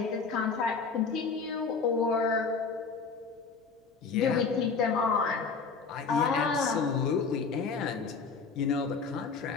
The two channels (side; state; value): right; quieter; 5.0 dB